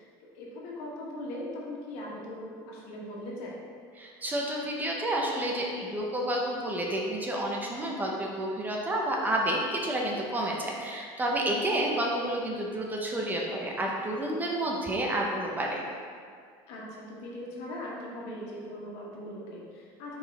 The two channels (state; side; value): normal; both; correlation 0.38